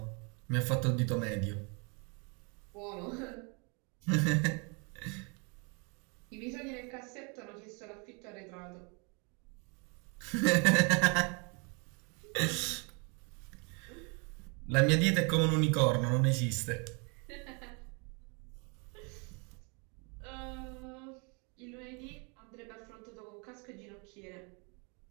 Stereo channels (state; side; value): quieter; left; 33.6 dB